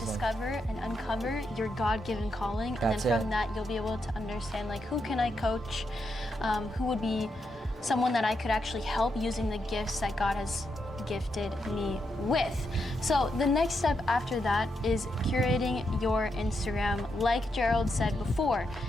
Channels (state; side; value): normal; both; correlation 0.82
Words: discover and uncover your God-given calling. And then from that, you'll be able to understand like who can I coach, who would be someone that I could actually help using the gifts that God has gifted me with. So the next step after that is curating your Instagram. Like Gerald said before,